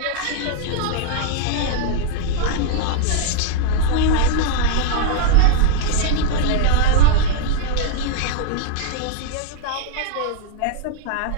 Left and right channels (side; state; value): both; different; correlation 0.00